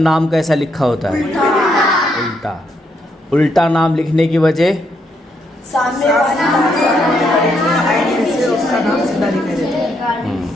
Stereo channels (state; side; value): normal; both; correlation 0.76